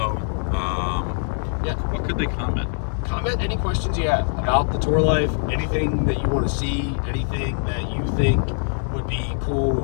Yeah. What could they comment? Comment any questions you have about the tour life, anything that you want to see, anything that you think would be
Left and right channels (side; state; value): right; silent; digital silence